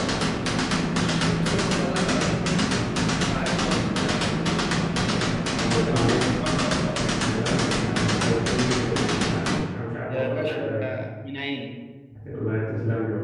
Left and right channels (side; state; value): both; identical; correlation 1.00